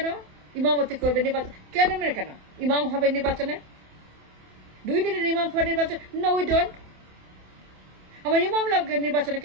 ইমামতি করবে নির্বাচন? ক্যান্টনমেন্ট কেন ইমাম হবে নির্বাচনে? Do you need an imam for নির্বাচন? No, we don't. আমার ইমাম লাগবে নির্বাচনে,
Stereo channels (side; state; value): left; late; 27 ms